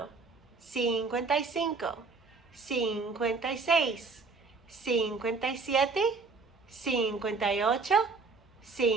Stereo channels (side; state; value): left; quieter; 4.3 dB